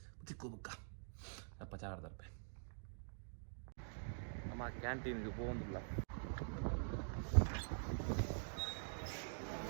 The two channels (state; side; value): silent; left; digital silence